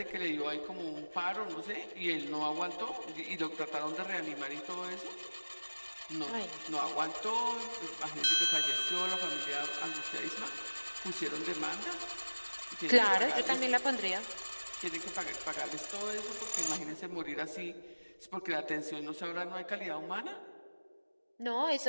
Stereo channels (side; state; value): both; inverted; correlation -1.00